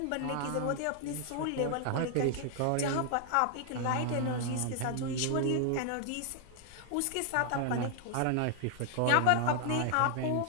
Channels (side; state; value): both; different; correlation 0.00